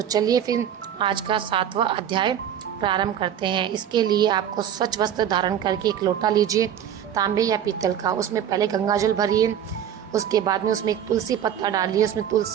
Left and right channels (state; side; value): quieter; left; 9.6 dB